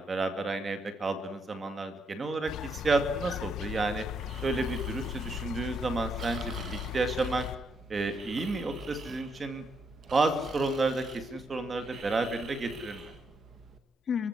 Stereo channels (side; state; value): both; normal; correlation 0.76